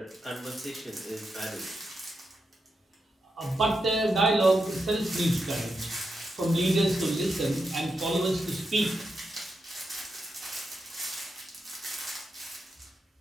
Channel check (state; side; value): normal; both; correlation 0.86